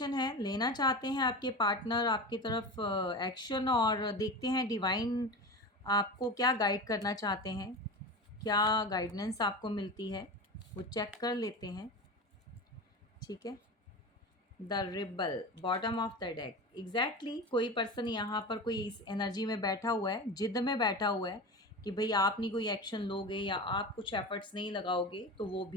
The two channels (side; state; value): both; normal; correlation 0.27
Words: है, लेना चाहते हैं आपके पार्टनर आपकी तरफ एक्शन, और देखते हैं डिवाइन आपको क्या गाइड करना चाहते हैं, क्या गाइडेंस आपको मिलती है, वो चेक कर लेते हैं, ठीक है। The rebel, bottom of the deck, exactly कोई पर्सन यहाँ पर कोई इस एनर्जी में बैठा हुआ है, जिद में बैठा हुआ है कि भाई आप नहीं कोई एक्शन लोगे या आप कुछ एफर्ट्स नहीं लगाओगे तो वो